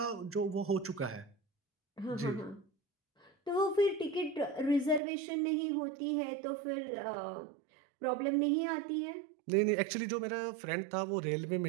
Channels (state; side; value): drops out; left; at 5.0 s